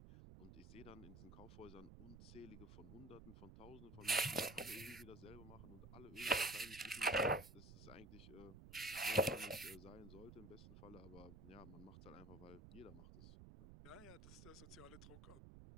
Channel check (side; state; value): right; noise; rumble, 14 dB below the sound